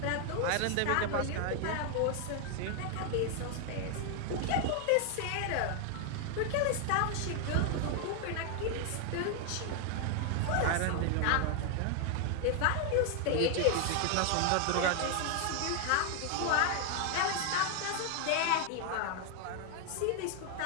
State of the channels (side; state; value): both; different; correlation 0.01